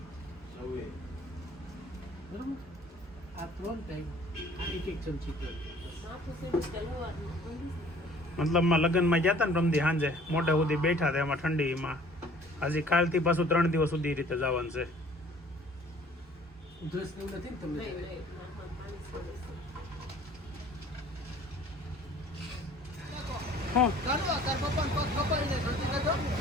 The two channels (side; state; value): both; normal; correlation 0.52